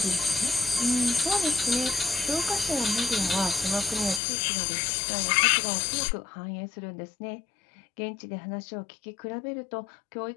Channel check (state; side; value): drops out; right; at 4.2 s